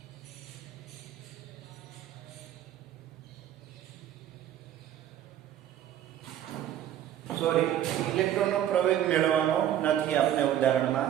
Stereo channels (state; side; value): quieter; left; 11.2 dB